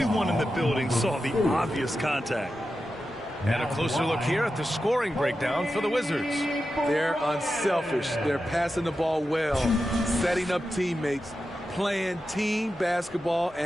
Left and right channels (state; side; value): normal; both; correlation 0.91